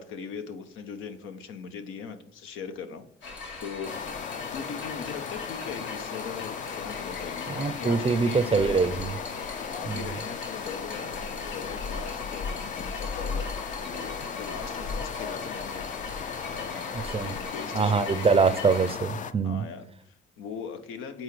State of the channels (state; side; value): normal; both; correlation 0.44